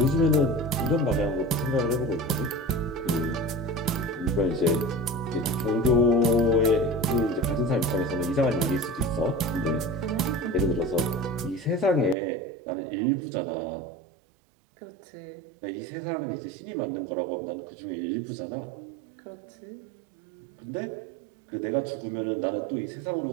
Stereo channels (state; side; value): drops out; left; at 12.2 s